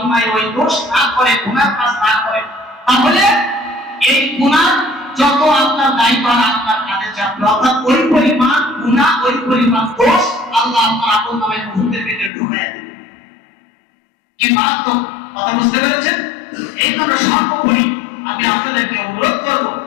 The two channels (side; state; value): right; drops out; at 12.3 s